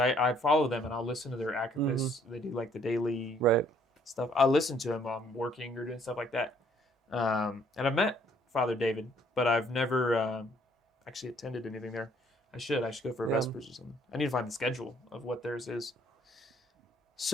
follow them and I'll listen to their activists. They do like the daily Right. stuff. I listen to them while I'm working or doing stuff like that. And I've met Father David, but I've never actually attended anything there. I should go for a Vespers or something. I need to find the schedule of what theirs is.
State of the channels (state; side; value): normal; both; correlation 0.63